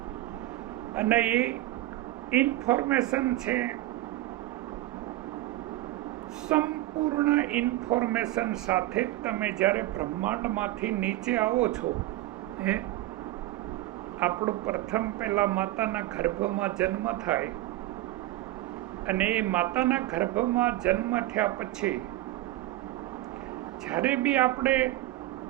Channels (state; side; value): quieter; left; 16.1 dB